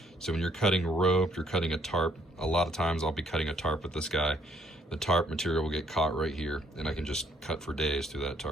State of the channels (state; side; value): normal; both; correlation 0.66